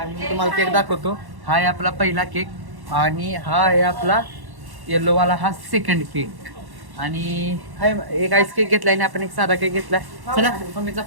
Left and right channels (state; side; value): late; left; 1.1 ms